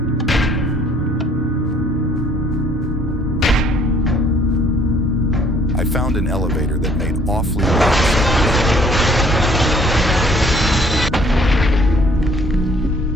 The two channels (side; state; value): both; normal; correlation 0.60